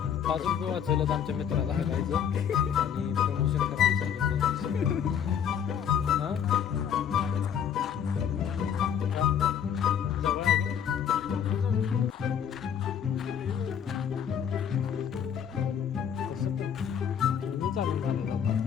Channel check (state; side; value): quieter; right; 8.4 dB